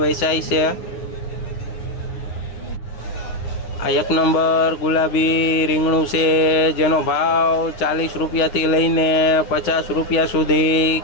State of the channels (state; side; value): late; right; 9.7 ms